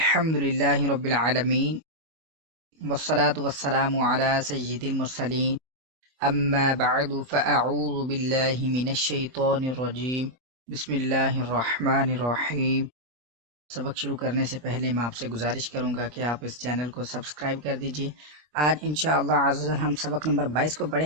रब्बिल आलमीन वस्सलातु वस्सलामु अला सय्यिदिल मुरसलीन अम्मा बअदु फ़अऊज़ु बिल्लाहि मिनश शैतानिर रजीम बिस्मिल्लाहिर रहमानिर रहीम। सबक शुरू करने से पहले मैं आपसे गुजारिश करूंगा कि आप इस चैनल को सब्सक्राइब कर दीजिए। आज इंशाअल्लाह अज़्ज़ल हम सबक नंबर 22 को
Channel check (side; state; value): left; late; 25 ms